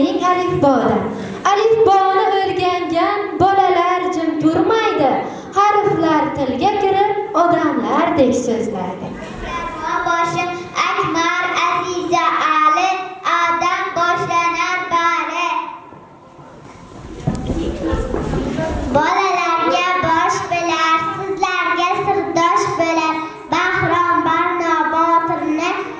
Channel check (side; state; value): both; identical; correlation 1.00